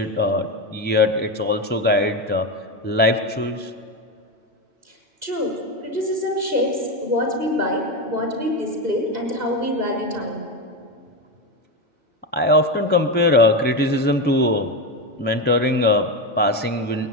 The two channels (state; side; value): normal; both; correlation 0.14